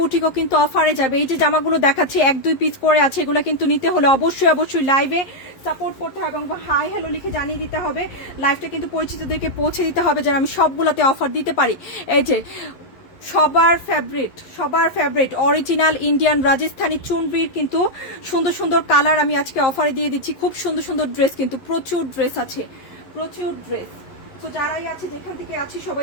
কিন্তু অফারে যাবে। এই যে জামাগুলো দেখাচ্ছি, 1-2 পিস করে আছে, এগুলো কিন্তু নিতে হলে অবশ্যই অবশ্যই লাইভে সাপোর্ট করতে হবে এবং হাই হ্যালো লিখে জানিয়ে দিতে হবে। লাইভটা কিন্তু পরিচিতদেরকে পৌঁছে দিতে হবে যেন আমি সবগুলোতে অফার দিতে পারি। এই যে সবার ফেভারিট অরিজিনাল ইন্ডিয়ান রাজস্থানী চুনরির কিন্তু সুন্দর সুন্দর কালার আমি আজকে অফারে দিয়ে দিচ্ছি। খুব সুন্দর সুন্দর ড্রেস, কিন্তু প্রচুর ড্রেস আছে, প্রচুর ড্রেস। তো যারাই আছে, যেখান থেকে আছি, সবাই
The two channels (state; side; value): late; right; 11 ms